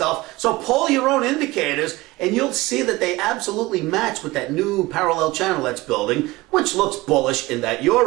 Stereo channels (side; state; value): left; quieter; 20.2 dB